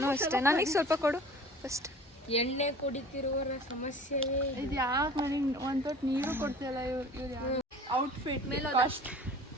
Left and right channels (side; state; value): both; normal; correlation 0.44